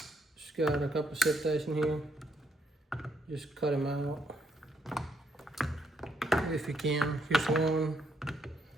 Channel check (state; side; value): normal; both; correlation 0.74